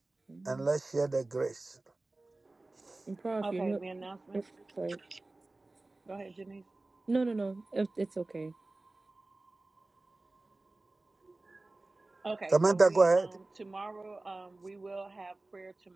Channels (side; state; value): left; quieter; 3.0 dB